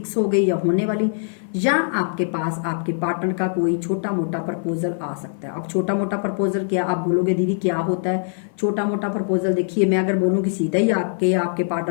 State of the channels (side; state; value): right; silent; 56 dB below the other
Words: हो गई या होने वाली, या आपके पास आपके पार्टनर का कोई छोटा मोटा प्रपोजल आ सकता है। अब छोटा मोटा प्रपोजल क्या, आप बोलोगे दीदी क्या होता है छोटा मोटा प्रपोजल? देखिए मैं अगर बोलूँ कि सीधा ही आपके